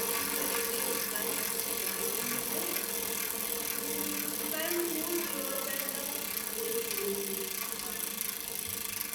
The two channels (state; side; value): identical; both; correlation 1.00